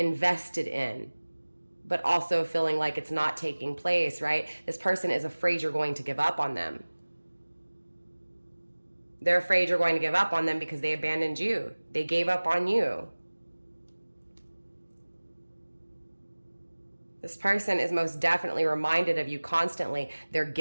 in, but also feeling like it's not taking place, right? This person is afraid you're going to give up on them. They're afraid you're going to give up on them because they abandoned you. They gave up on you. This person is most definitely reminded of you constantly. They're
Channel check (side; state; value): both; inverted; correlation -1.00